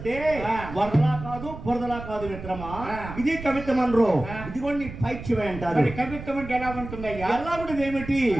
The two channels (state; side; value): noise; right; rumble, 11 dB below the sound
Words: వరదలా కాదు బురదలా కాదు మిత్రమా. ఇది కవిత్వం అనరు, ఇది కూడా నీ పైత్యమే అంటారు. కవిత్వం అంటే ఎలా ఉంటుందయ్యా? ఎలా కూడా ఏమిటి?